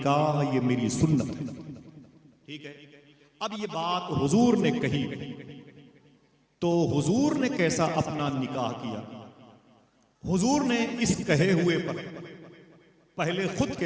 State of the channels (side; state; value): both; identical; correlation 1.00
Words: ये मेरी सुन्नत है। ठीक है, अब ये बात हुजूर ने कही तो हुजूर ने कैसा अपना निकाह किया, हुजूर ने इस कहे हुए पर पहले खुद